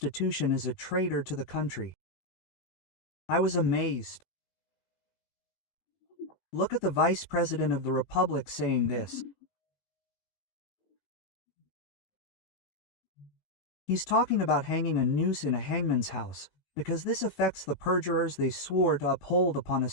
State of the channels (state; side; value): late; right; 19 ms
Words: is a traitor to the country. I was amazed. Look at the Vice President of the Republic saying this. He's talking about hanging a noose in a hangman's house, because this affects the perjurers they swore to uphold upon